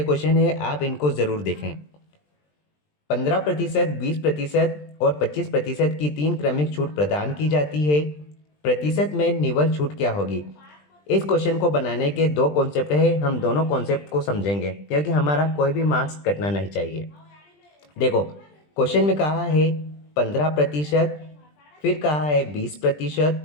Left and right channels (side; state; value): right; late; 20 ms